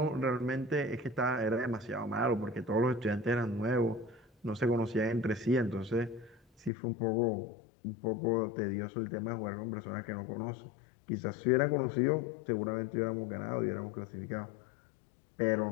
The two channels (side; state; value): right; drops out; at 6.7 s